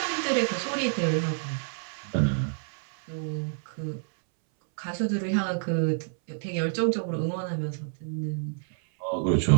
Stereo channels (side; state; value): left; silent; 59 dB below the other